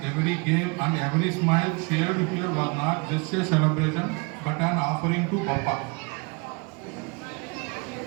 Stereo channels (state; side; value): quieter; left; 30.1 dB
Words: every game and every smile shared here was not just a celebration but an offering to Bappa.